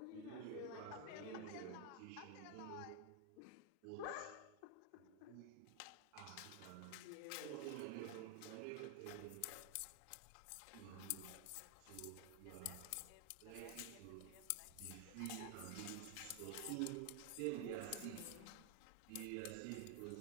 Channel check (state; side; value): different; both; correlation 0.00